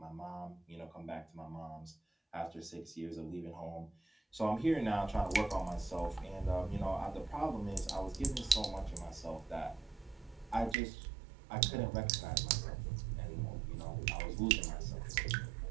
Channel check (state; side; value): drops out; left; at 10.8 s